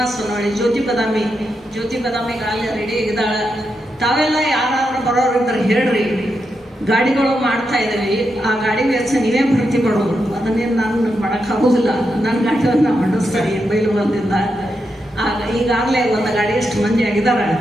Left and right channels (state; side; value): normal; both; correlation 0.85